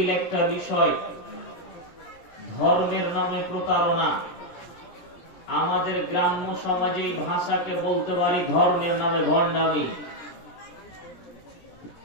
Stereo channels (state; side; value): late; right; 17 ms